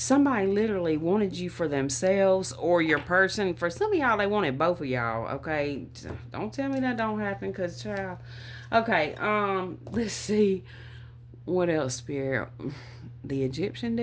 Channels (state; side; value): identical; both; correlation 1.00